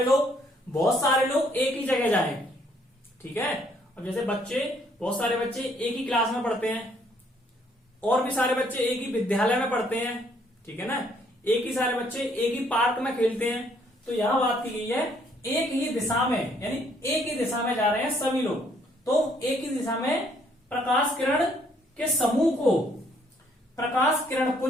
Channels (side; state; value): both; normal; correlation 0.66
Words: बहुत सारे लोग एक ही जगह जाए, ठीक है। अब जैसे बच्चे, बहुत सारे बच्चे एक ही क्लास में पढ़ते हैं, और भी सारे बच्चे एक ही विद्यालय में पढ़ते हैं, ठीक है ना, एक ही सारे बच्चे एक ही पार्क में खेलते हैं। तो यहां बात की गई है एक ही दिशा में, यानी एक ही दिशा में जा रहे हैं सभी लोग, तो एक ही दिशा में प्रकाश किरण के समूह को प्रकाश किरण